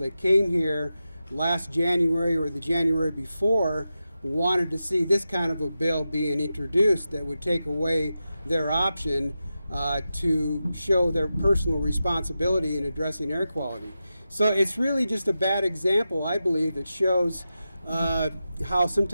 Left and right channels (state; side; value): inverted; both; correlation -0.91